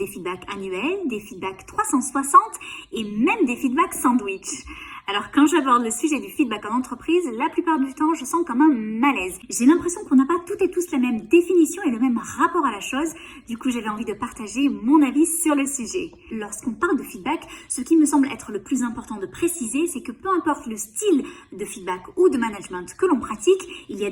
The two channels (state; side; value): identical; both; correlation 1.00